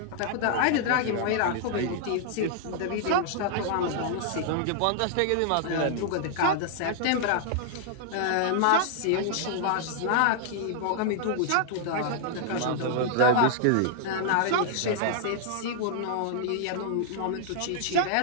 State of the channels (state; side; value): different; both; correlation -0.01